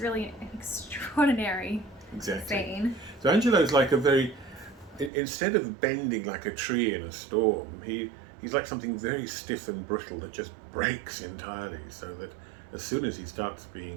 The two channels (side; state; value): left; drops out; at 5.1 s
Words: an extraordinary scene. So Angelo's like instead of bending like a tree in a storm, he's like something very stiff and brittle that just breaks entirely, so that as soon as he starts